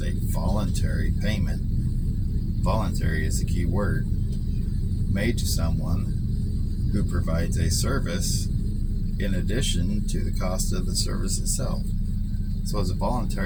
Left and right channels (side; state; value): both; identical; correlation 1.00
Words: a voluntary payment. Voluntary is the key word. Made to someone who provides a service in addition to the cost of the service itself. So it's a